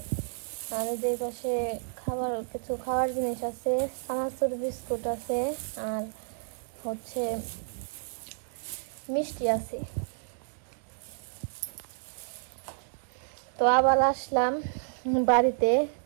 আর যে পাশে খাবার কিছু খাওয়ার জিনিস আছে, চানাচুর বিস্কুট আছে, আর হচ্ছে মিষ্টি আছে। তো আবার আসলাম বাড়িতে,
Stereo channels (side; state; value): left; silent; digital silence